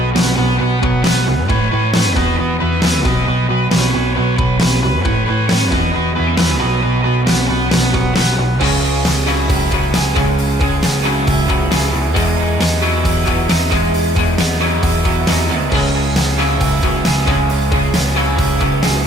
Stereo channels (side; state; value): both; normal; correlation 0.67